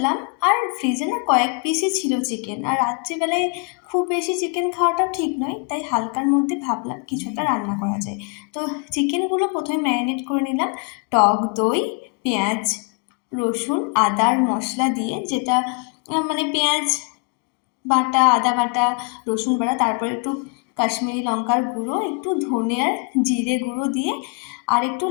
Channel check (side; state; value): right; quieter; 33.9 dB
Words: আর ফ্রিজে না কয়েক পিসই ছিল চিকেন, আর রাত্রিবেলায় খুব বেশি চিকেন খাওয়াটাও ঠিক নয়, তাই হালকার মধ্যে ভাবলাম কিছু একটা রান্না করা যায়। তো চিকেনগুলো প্রথমে ম্যারিনেট করে নিলাম টক দই, পেঁয়াজ, রসুন, আদার মশলা দিয়ে, যেটা মানে পেঁয়াজ বাটা, আদা বাটা, রসুন বাটা, তারপর একটু কাশ্মীরি লঙ্কার গুঁড়ো, একটু ধনে আর জিরে গুঁড়ো দিয়ে আর একটু